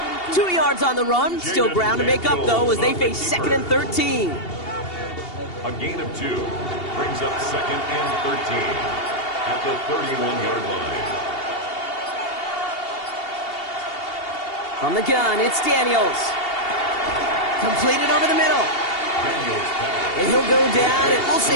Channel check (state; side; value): late; right; 2.8 ms